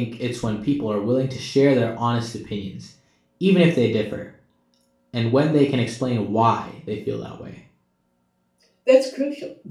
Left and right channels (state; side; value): identical; both; correlation 1.00